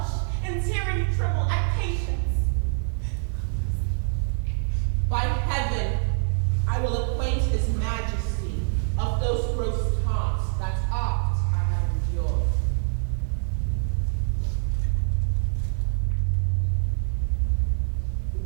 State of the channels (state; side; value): silent; left; 61 dB below the other